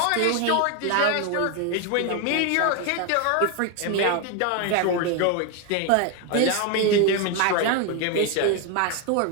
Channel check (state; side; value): different; both; correlation 0.01